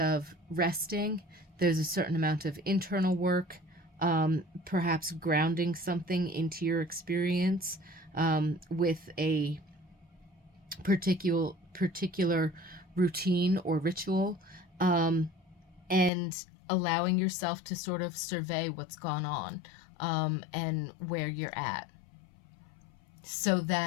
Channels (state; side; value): drops out; right; at 16.1 s